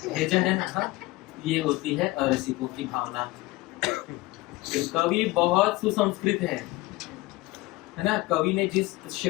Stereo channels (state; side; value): quieter; right; 20.0 dB